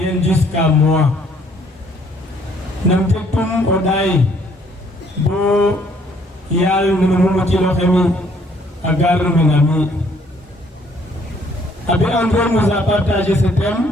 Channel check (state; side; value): normal; both; correlation 0.64